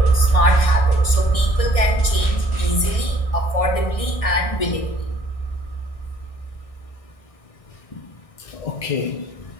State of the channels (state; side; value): late; right; 1.6 ms